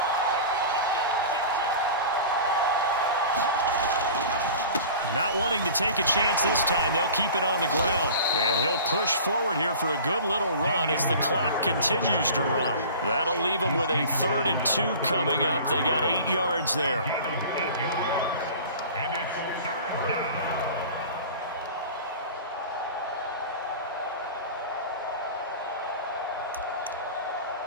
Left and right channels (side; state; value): both; inverted; correlation -0.39